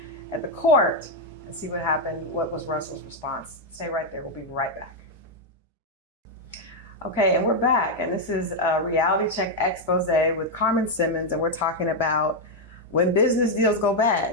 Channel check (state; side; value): normal; both; correlation 0.01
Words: at the court and see what happened. What was Russell's response? Stay right there. We'll be right back. Okay, and we're back. And this is a Reality Check Expose with Carmen Simmons. And we're talking about when business deals go